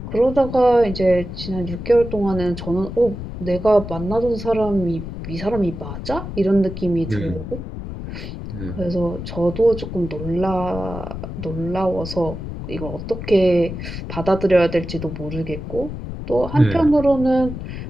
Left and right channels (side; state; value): left; noise; rumble, 8 dB below the sound